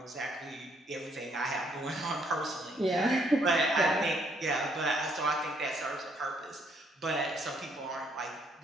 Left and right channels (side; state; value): both; normal; correlation 0.69